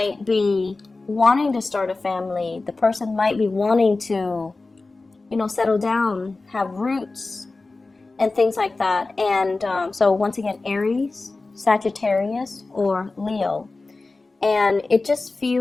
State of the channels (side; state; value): right; quieter; 3.5 dB